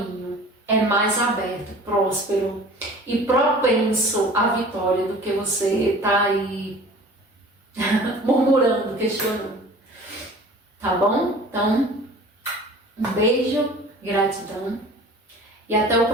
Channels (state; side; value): normal; both; correlation 0.43